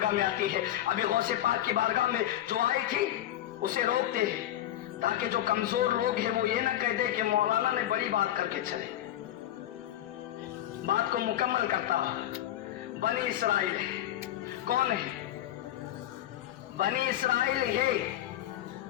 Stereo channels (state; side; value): quieter; right; 12.8 dB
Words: میں آتی ہے۔ ابھی غوث پاک کی بارگاہ میں جو آئی تھی اسے روکتے ہیں تاکہ جو کمزور لوگ ہیں وہ یہ نہ کہہ دے کہ مولانا نے بڑی بات کر کے چلے، بات کو مکمل کرتا۔ بنی اسرائیل کون ہے؟ بنی اسرائیل ہے